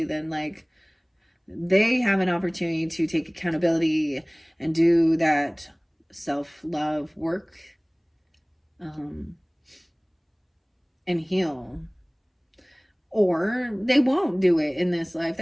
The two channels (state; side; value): identical; both; correlation 1.00